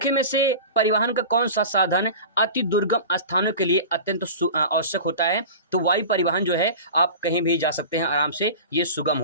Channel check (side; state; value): both; inverted; correlation -0.34